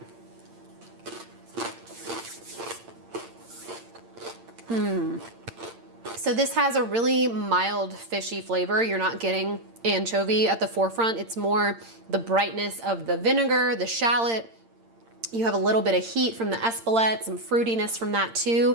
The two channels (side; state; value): left; late; 8.8 ms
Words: So this has a really mild fishy flavor. You're not getting anchovy at the forefront. It's more the brightness of the vinegar, the shallot. You have a little bit of heat from the espelette, some fruitiness from that too.